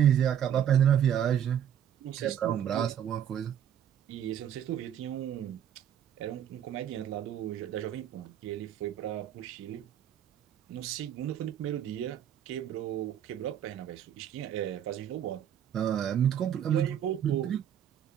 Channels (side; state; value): left; quieter; 9.7 dB